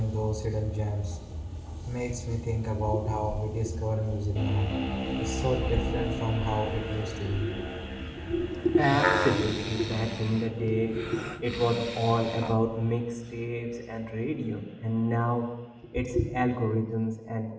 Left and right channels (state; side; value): identical; both; correlation 1.00